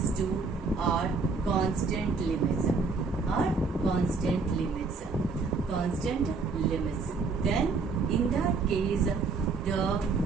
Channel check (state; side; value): quieter; left; 4.4 dB